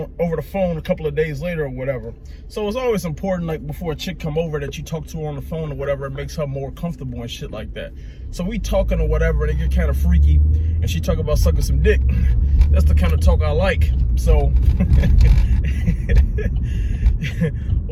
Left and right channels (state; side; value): identical; both; correlation 1.00